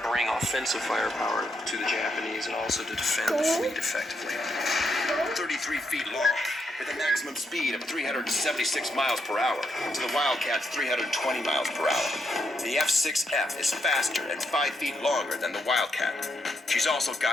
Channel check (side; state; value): both; normal; correlation 0.79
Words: bring offensive firepower to the Japanese and also to defend the fleet effectively. 33 feet long, with a maximum speed of 376 miles per hour to the Wildcat's 320 miles per hour. The F-6F is faster and 5 feet longer than the Wildcat. She's also